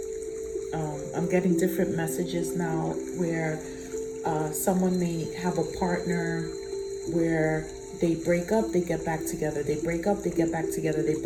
I'm getting different messages now where someone may have a partner where they break up, they get back together. They break up, they get back together. They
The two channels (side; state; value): both; identical; correlation 1.00